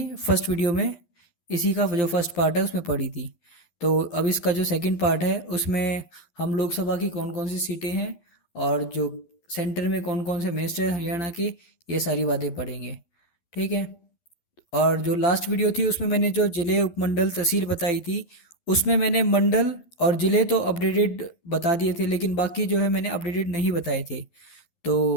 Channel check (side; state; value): right; late; 12 ms